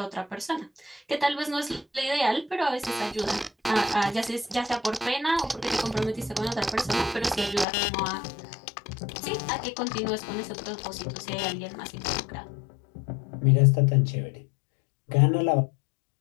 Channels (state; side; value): drops out; right; at 7.7 s